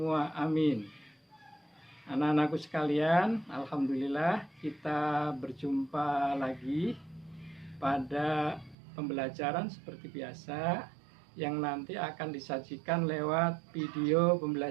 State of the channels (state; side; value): drops out; left; at 8.8 s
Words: amin. Anak-anakku sekalian, alhamdulillah kita berjumpa lagi pada pembelajaran seperti biasa yang nanti akan disajikan lewat video